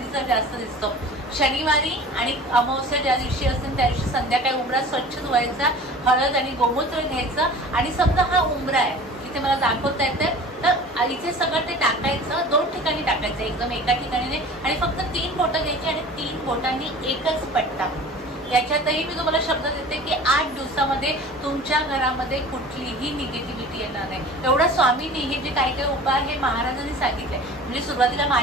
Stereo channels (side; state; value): both; normal; correlation 0.41